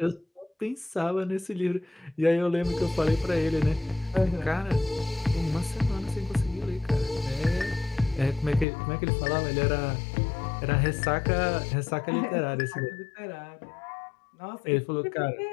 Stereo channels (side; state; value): right; drops out; at 8.7 s